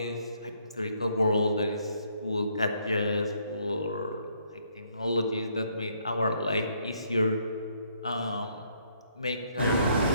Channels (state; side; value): inverted; both; correlation -0.69